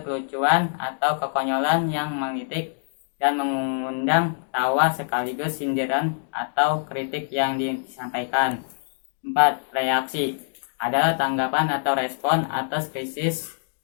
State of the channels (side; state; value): right; silent; digital silence